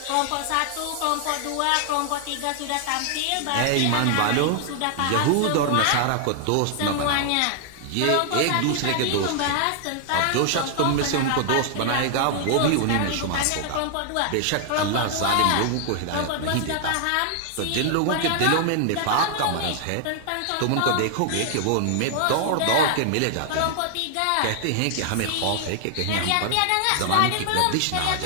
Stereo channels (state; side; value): different; both; correlation 0.00